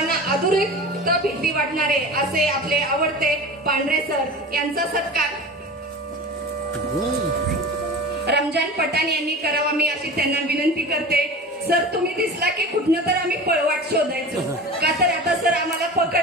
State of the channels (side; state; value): both; normal; correlation 0.33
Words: अधोरेखित भीती वाटणारे असे आपले आवडते पांढरे सर यांचा सत्कार रमजान पठाण यांनी करावा मी अशी त्यांना विनंती करते. सर तुम्ही दिसला की कुठनं तर आम्ही पळवाट शोधायचो, का तर आता सर आम्हाला